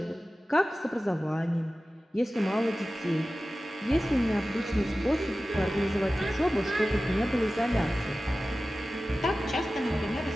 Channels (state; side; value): normal; both; correlation 0.95